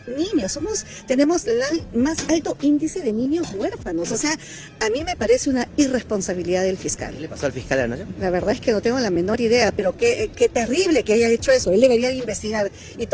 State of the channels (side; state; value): both; identical; correlation 1.00